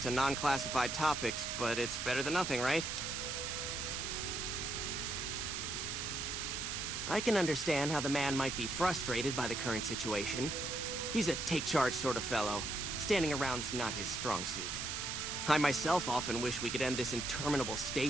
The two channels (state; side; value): noise; right; hiss, 3 dB below the sound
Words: non-classified topics, but it's better than nothing, right? I can understand how the man might be frustrated by the current situation. He's a take-charge sort of fellow. Standing around's not his strong suit. I myself often wish we could end this interminable